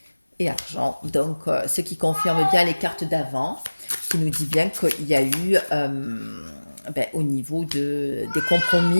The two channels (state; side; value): inverted; both; correlation -1.00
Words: et argent. Donc, ce qui confirme bien les cartes d'avant, qui nous dit bien qu'il y a eu, ben, au niveau des